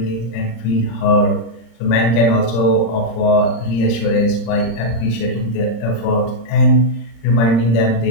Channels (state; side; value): late; right; 34 ms